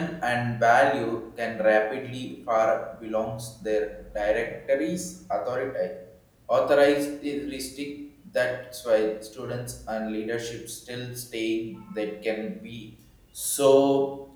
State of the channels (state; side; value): identical; both; correlation 1.00